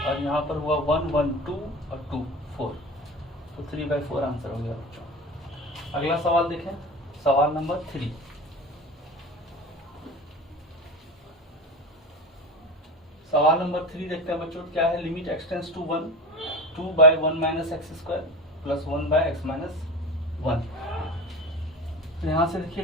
और यहाँ पर हुआ 1 1 2 और 2 4, तो 3/4 आंसर हो गया बच्चों। अगला सवाल देखें, सवाल नंबर 3। सवाल नंबर 3 देखते हैं बच्चों, क्या है, limit x tends to 1 2 by 1 minus x² plus 1 by x minus 1। तो यहाँ से देखिए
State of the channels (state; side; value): normal; both; correlation 0.30